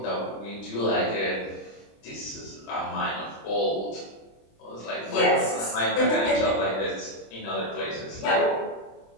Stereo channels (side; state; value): right; late; 26 ms